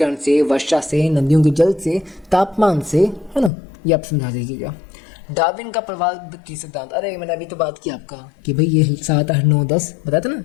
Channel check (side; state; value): right; drops out; at 3.5 s